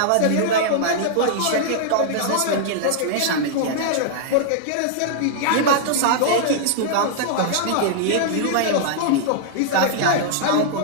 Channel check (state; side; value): different; both; correlation -0.01